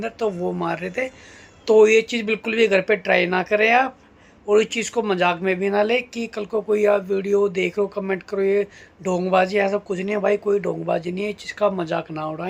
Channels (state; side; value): identical; both; correlation 1.00